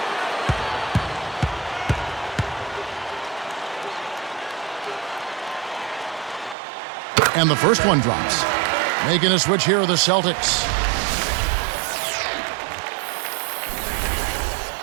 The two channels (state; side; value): drops out; left; at 6.6 s